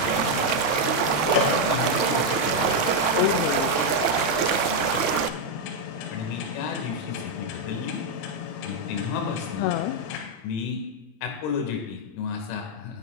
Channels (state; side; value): late; right; 26 ms